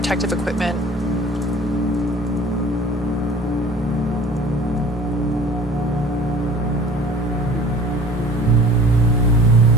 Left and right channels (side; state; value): both; normal; correlation 0.46